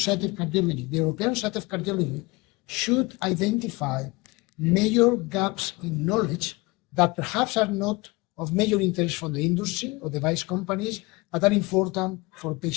of Cardiology, the European Society of Cardiology should identify major gaps in knowledge that perhaps are not of major interest for the industry or device companies, but are important for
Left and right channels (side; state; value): right; quieter; 24.1 dB